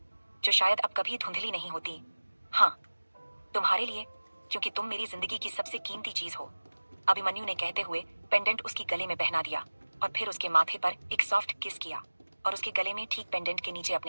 जो शायद अब कभी धुंधली नहीं होती। हाँ, तुम्हारे लिए, क्योंकि तुम मेरी जिंदगी की सबसे कीमती चीज हो। अभिमन्यु ने कहते हुए पेंडेंट उसकी गले में पहना दिया और फिर उसके माथे पर एक सॉफ्ट किस किया और उसके गले में ठीक पेंडेंट के नीचे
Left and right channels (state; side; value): inverted; both; correlation -1.00